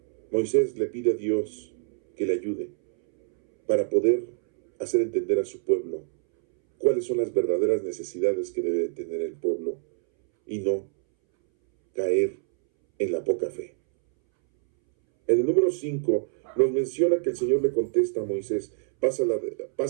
Moisés le pide a Dios que le ayude para poder hacer entender a su pueblo cuáles son las verdaderas necesidades que debe tener el pueblo y no caer en la poca fe. En el número 5 nos menciona que el Señor le contesta a Moisés,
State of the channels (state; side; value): silent; left; 61 dB below the other